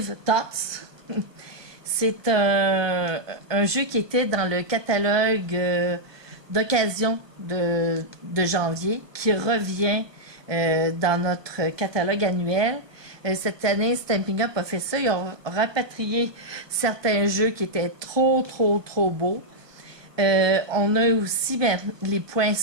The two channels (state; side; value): late; left; 1.3 ms